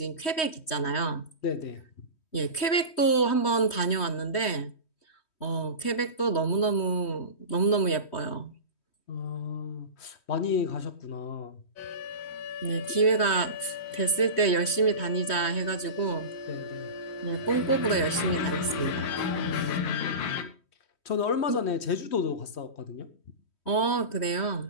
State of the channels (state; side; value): late; right; 3.1 ms